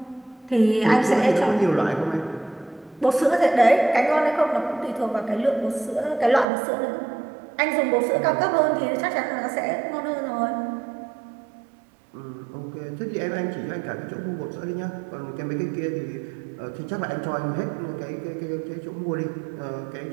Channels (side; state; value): left; drops out; at 6.5 s